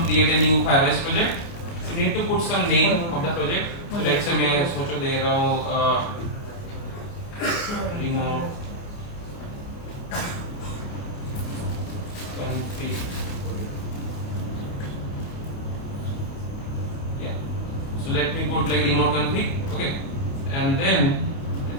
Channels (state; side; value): late; right; 29 ms